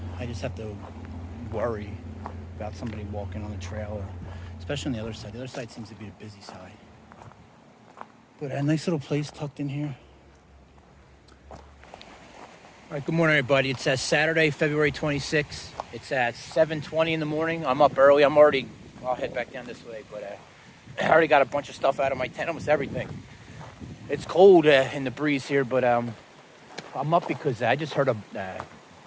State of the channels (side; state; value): both; identical; correlation 1.00